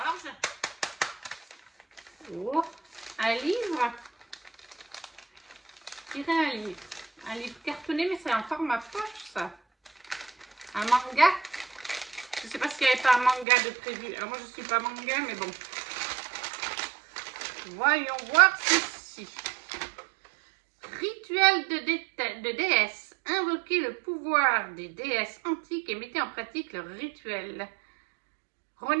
oh, un livre, je dirais un livre cartonné, mais c'est un format poche ça. Un manga. Je ne sais pas s'il n'y avait pas un manga de prévu. Alors moi je ne suis pas manga, mais bon. Voyons voir ceci. Rituel de déesse. Invoquez le pouvoir des déesses antiques et mettez en pratique leur rituel.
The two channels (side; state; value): left; drops out; at 13.5 s